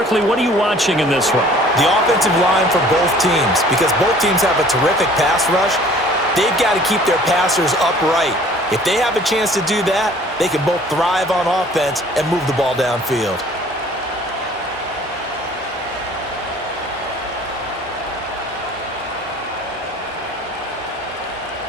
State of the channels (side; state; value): both; normal; correlation 0.51